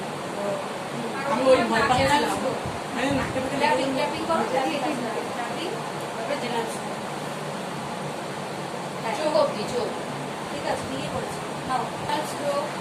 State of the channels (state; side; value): identical; both; correlation 1.00